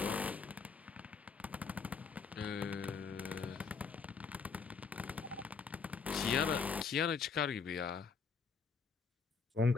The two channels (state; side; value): quieter; right; 5.4 dB